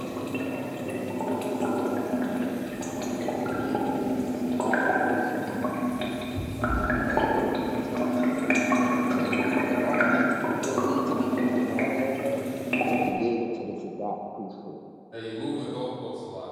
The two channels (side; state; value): both; identical; correlation 1.00